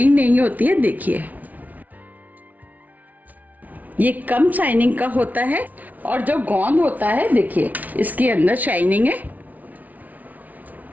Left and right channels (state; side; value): late; left; 0.075 ms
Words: नहीं होती है। देखिए, ये कम शाइनिंग का होता है और जो गोंद होता है, देखिए इसके अंदर शाइनिंग है।